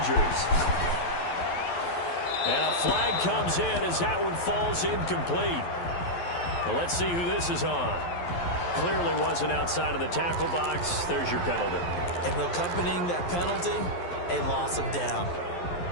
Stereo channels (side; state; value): right; late; 11 ms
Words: And a flag comes in as that one falls incomplete. Well, let's see who this is on. Clearly wasn't outside of the tackle box. There's your penalty. And accompanying that penalty, a loss of down.